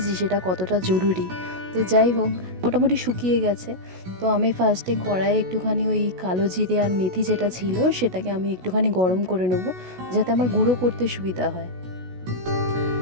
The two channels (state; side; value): late; left; 16 ms